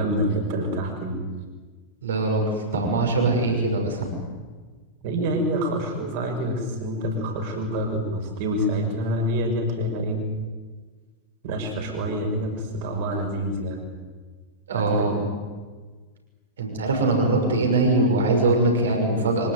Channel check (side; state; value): both; normal; correlation -0.19